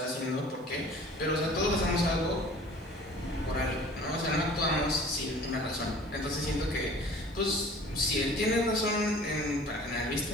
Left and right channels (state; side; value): normal; both; correlation 0.47